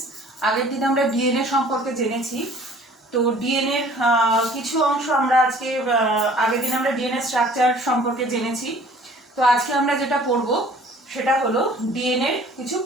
আগের দিন আমরা ডিএনএ সম্পর্কে জেনেছি। তো ডিএনএর কিছু অংশ আমরা আজকে আগের দিন আমরা ডিএনএ স্ট্রাকচার সম্পর্কে জেনেছি। তো আজকে আমরা যেটা পড়ব সেটা হলো ডিএনএর কিছু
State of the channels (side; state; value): both; normal; correlation 0.52